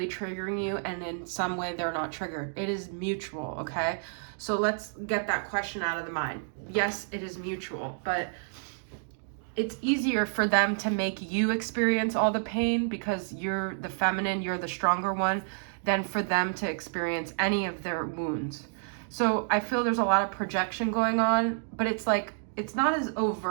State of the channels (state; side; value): silent; left; digital silence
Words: triggering you and in some way they're not triggered. It is mutual, okay? So let's get that question out of the mind. Yes, it is mutual, but it's easier for them to make you experience all the pain because you're the feminine, you're the stronger one, than for them to experience any of their wounds. So I feel there's a lot of projection going on, but it's like, it's not as